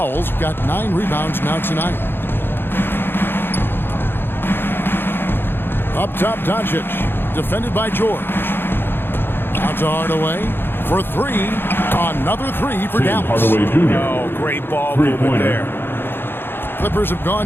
got 9 rebounds now tonight. Up top, Doncic. Defended by George. Out to Hardaway for 3. Another 3 for Dallas. Oh, great ball movement there. Clippers have gone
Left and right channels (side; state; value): right; late; 0.10 ms